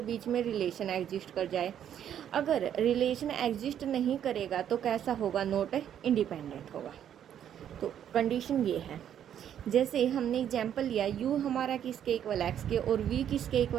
बीच में रिलेशन एग्जिस्ट कर जाए. अगर रिलेशन एग्जिस्ट नहीं करेगा तो कैसा होगा? नॉट इंडिपेंडेंट होगा. तो कंडीशन ये है. जैसे हमने एग्जाम्पल लिया, u हमारा किसके इक्वल x के और v किसके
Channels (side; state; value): left; quieter; 9.8 dB